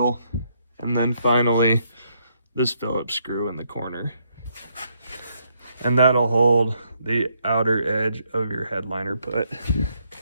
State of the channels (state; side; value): inverted; both; correlation -0.74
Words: And then finally, this Phillips screw in the corner. And that'll hold the outer edge of your headliner put.